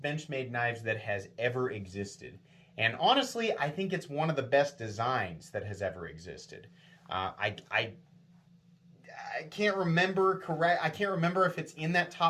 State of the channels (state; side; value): identical; both; correlation 1.00